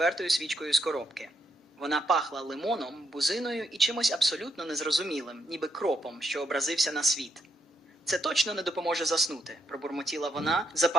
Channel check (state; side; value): normal; both; correlation 0.78